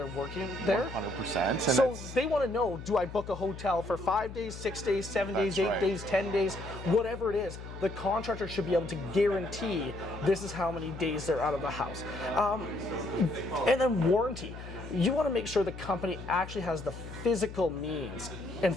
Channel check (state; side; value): noise; left; hum, 11 dB below the sound